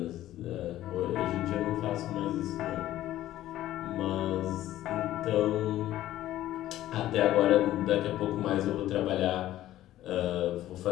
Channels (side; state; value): right; quieter; 13.9 dB